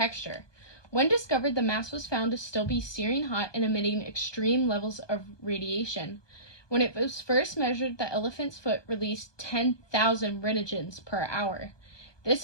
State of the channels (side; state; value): right; late; 1.2 ms